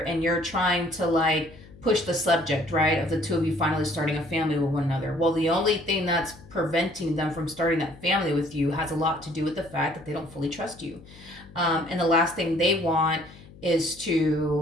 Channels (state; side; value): noise; left; hum, 21 dB below the sound